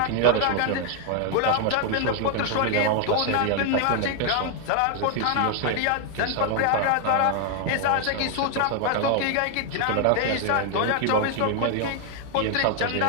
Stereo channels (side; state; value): both; different; correlation 0.00